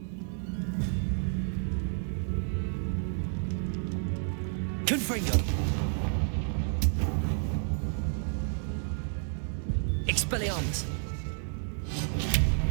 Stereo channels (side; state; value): left; silent; 57 dB below the other